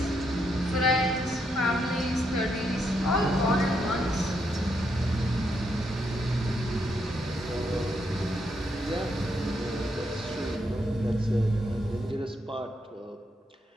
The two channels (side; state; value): both; normal; correlation 0.78